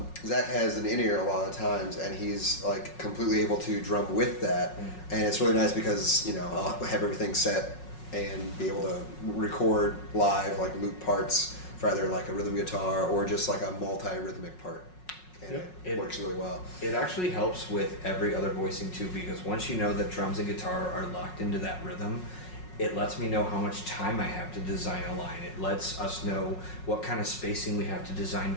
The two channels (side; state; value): right; late; 5.5 ms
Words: Zach has an in-ear a lot of times, and he's like completely able to drum with that, and it's really nice because I'll have everything set and be able to record live like loop parts for either like a rhythm guitar or just like a multi-rhythmic part. And it works really well. It actually helps with every other voicing too, because once you know that drums and guitar are locked into that rhythm, it lets me know how much time I have to design a line. It lets us know what kind of spacing we have to design